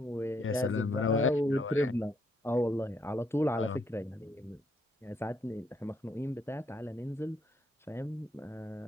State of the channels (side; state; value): both; normal; correlation 0.73